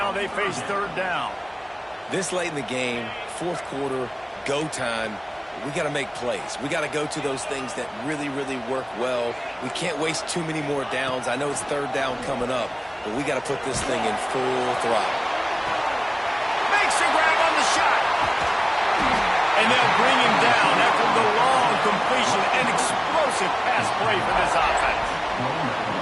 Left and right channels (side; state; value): both; identical; correlation 1.00